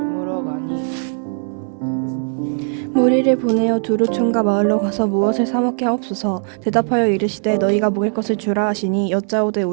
가니 무리를 보내어 두루촌과 마을로 가서 무엇을 사 먹게 하옵소서. 대답하여 이르시되 너희가 먹을 것을 주라 하시니 여짜오되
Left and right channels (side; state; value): left; silent; digital silence